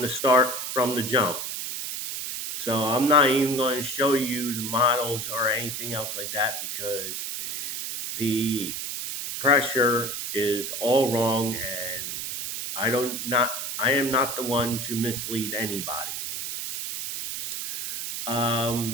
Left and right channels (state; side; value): noise; right; hiss, 4 dB below the sound